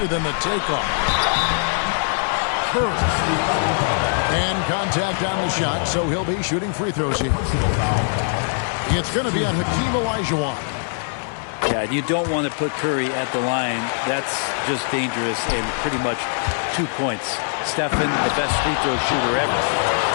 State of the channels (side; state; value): right; silent; digital silence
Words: than the takeoff. Curry. And contact on the shot, so he'll be shooting free throws here. It's going to be on Hakeem Olajuwon. Yeah, you don't want to put Curry at the line. That's just dangerous and pretty much 2 points. Stephen, the best free throw shooter ever.